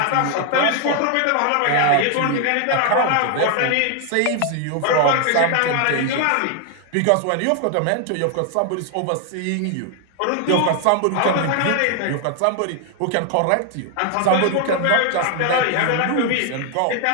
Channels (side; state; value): both; different; correlation 0.00